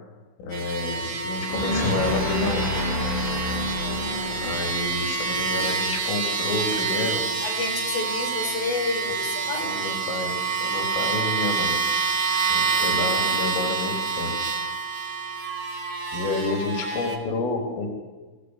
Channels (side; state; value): right; late; 16 ms